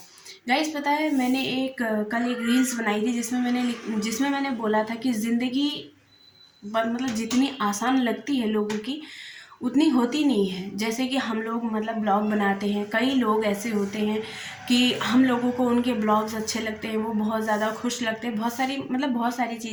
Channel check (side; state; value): both; identical; correlation 1.00